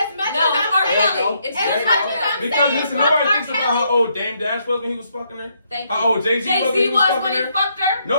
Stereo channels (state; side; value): inverted; both; correlation -0.74